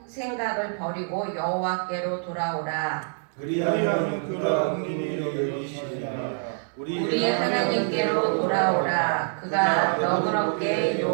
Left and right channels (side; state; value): left; silent; digital silence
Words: 버리고 여호와께로 돌아오라. 그리하면 그가 긍휼히 여기시리라. 우리 하나님께로 돌아오라. 그가 너그럽게